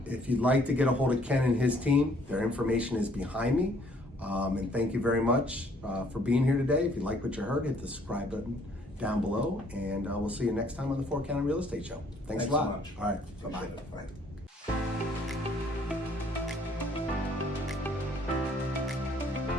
you. if you'd like to get a hold of Ken and his team, their information is behind me. And thank you very much for being here today. If you like what you heard, hit the subscribe button down below, and we'll see you next time on the 4 County Real Estate Show. Thanks a Thanks lot. so much. All right. Bye-bye. Appreciate it. Bye.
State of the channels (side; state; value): both; normal; correlation 0.62